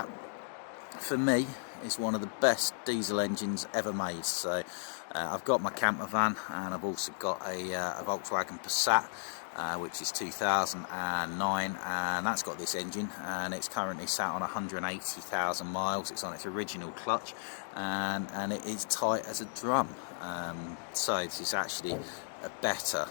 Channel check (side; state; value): right; silent; digital silence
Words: for me, is one of the best diesel engines ever made. So I've got my camper van, and I've also got a Volkswagen Passat, which is 2009, and that's got this engine, and it's currently sat on 180,000 miles. It's on its original clutch, and it is tight as a drum. So this is actually a better,